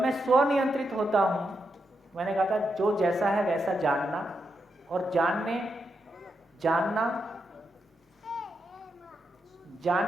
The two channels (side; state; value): both; normal; correlation 0.83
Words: स्वनियंत्रित होता हूं, मैंने कहा था जो जैसा है वैसा जानना, और